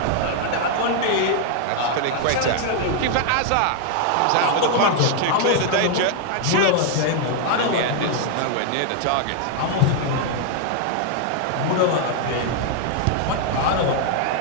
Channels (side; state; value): both; different; correlation 0.00